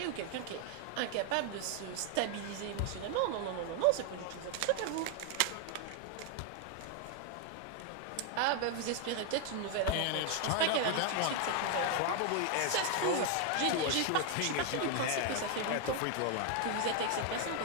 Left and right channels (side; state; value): both; different; correlation 0.00